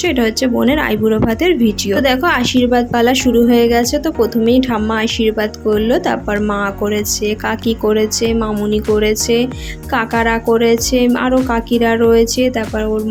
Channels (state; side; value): identical; both; correlation 1.00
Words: এটা হচ্ছে বোনের আইবুড়ো ভাতের ভিডিও। তো দেখো আশীর্বাদ পালা শুরু হয়ে গেছে। তো প্রথমেই ঠাম্মা আশীর্বাদ করলো, তারপর মা করেছে, কাকি করেছে, মামুনি করেছে, কাকারা করেছে, আরও কাকিরা রয়েছে, তারপর ওর